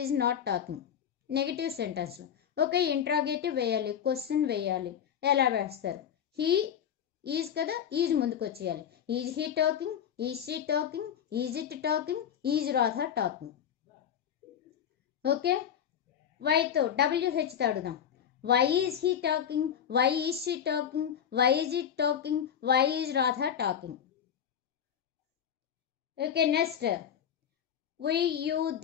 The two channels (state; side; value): quieter; right; 8.9 dB